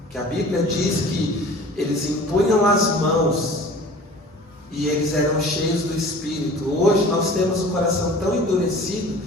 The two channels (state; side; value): normal; both; correlation 0.44